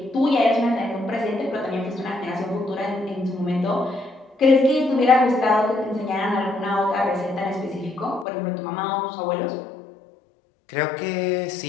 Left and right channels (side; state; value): right; drops out; at 8.2 s